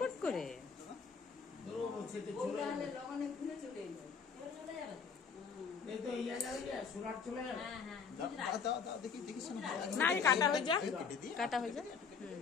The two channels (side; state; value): right; quieter; 5.8 dB